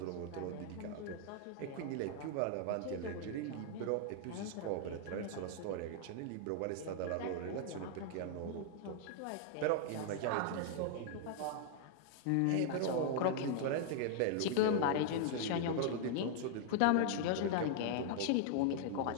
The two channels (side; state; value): both; different; correlation 0.00